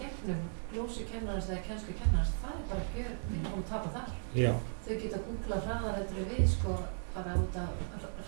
glósukennarans eða kennslukennarans, það er bara gjör að tapa þar. Já. Þau geta googlað hraðar eftir við sko, bara út af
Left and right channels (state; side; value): silent; left; digital silence